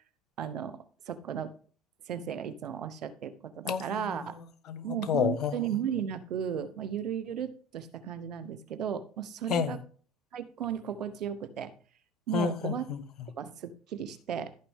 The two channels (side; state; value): both; normal; correlation 0.35